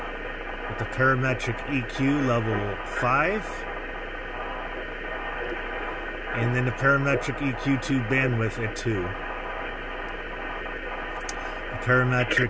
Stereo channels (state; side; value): identical; both; correlation 1.00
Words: With the parametric EQ level 5. And then the parametric EQ2 bandwidth at 2.